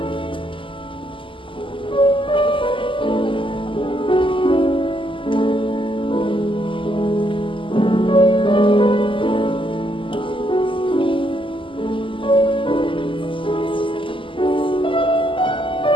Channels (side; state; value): right; late; 0.25 ms